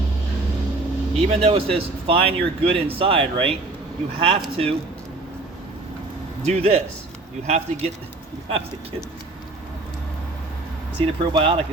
Even though it says find your good inside, right? You have to do this. You have to get, see, the probiotic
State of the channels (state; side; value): quieter; left; 3.1 dB